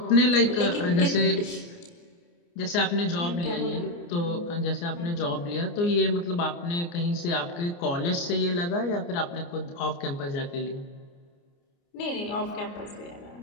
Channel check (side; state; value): right; late; 29 ms